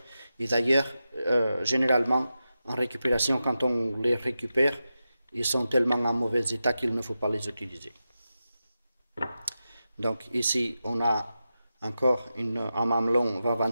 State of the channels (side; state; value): both; inverted; correlation -0.91